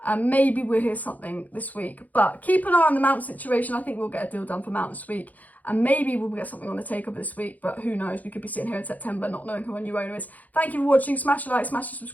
Maybe we'll hear something this week, but keep an eye on the Mount situation. I think we'll get a deal done for Mount this week. and maybe we'll get something on the takeover this week, but who knows, we could be sitting here in September not knowing who our new owner is. Thank you for watching, smash a like, smash a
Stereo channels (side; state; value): right; late; 0.079 ms